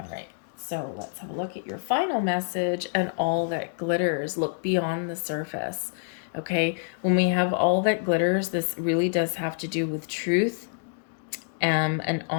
right, so let's have a look at your final message. And all that glitters, look beyond the surface. Okay, when we have all that glitters, this really does have to do with truth and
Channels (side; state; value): right; silent; digital silence